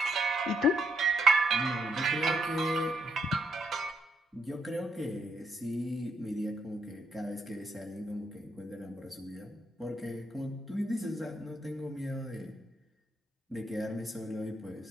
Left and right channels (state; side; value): normal; both; correlation 0.76